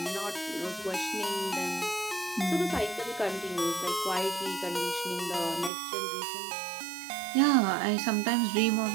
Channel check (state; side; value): drops out; left; at 5.7 s